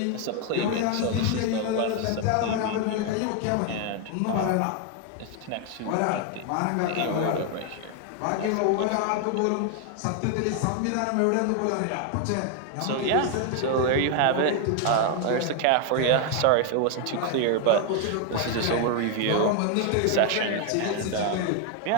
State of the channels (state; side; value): different; both; correlation 0.01